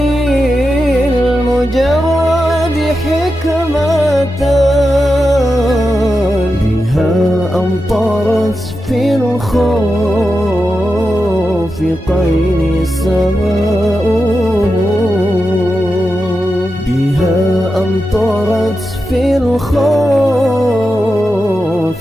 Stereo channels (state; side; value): normal; both; correlation 0.89